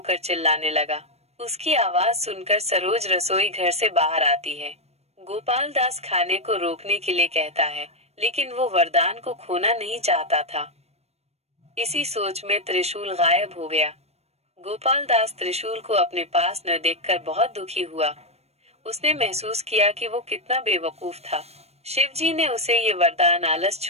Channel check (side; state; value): left; late; 0.31 ms